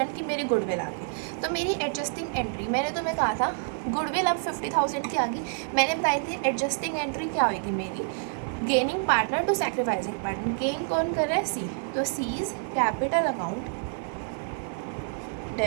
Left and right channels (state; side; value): silent; left; digital silence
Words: की मेरी गुडविल आ गई। तो मेरी एडजस्टिंग एंट्री, मैंने तुम्हें कहा था गुडविल अब 50,000 की आ गई। मैंने बताई थी एडजस्टिंग एंट्री क्या होगी मेरी, gaining partner to sacrificing partner. Gain कौन कर रहा है, सी, तो C is capital account